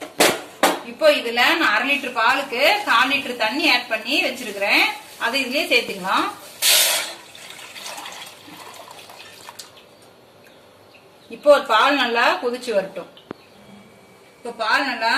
இப்போ இதுல நான் 1/2 லிட்டர் பாலுக்கு 1/4 லிட்டர் தண்ணி ஆட் பண்ணி வச்சிருக்கிறேன். அதை இதுலயே சேர்த்துக்கலாம். இப்போ பால் நல்லா கொதிச்சு வரட்டும். இப்போ பால் நல்லா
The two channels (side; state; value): both; identical; correlation 1.00